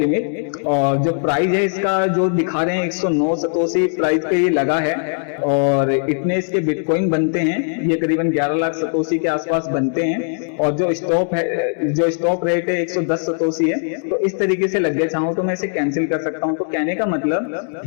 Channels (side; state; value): right; silent; digital silence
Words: और जो प्राइस है इसका जो दिखा रहे हैं 109 सतोशी प्राइस पे ये लगा है और इतने इसके बिटकॉइन बनते हैं, ये करीबन 11 लाख सतोशी के आसपास बनते हैं और जो स्टॉक है, जो स्टॉक रेट है 110 सतोशी है। तो इस तरीके से लग गया, चाहूँ तो मैं इसे कैंसिल कर सकता हूँ। तो कहने का मतलब